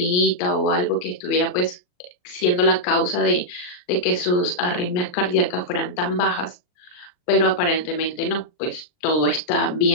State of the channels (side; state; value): right; late; 39 ms